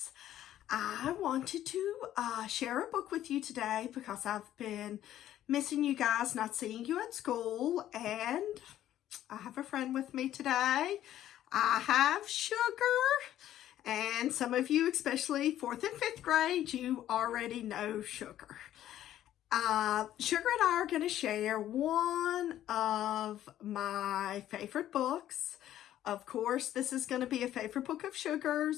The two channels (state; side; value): quieter; right; 12.3 dB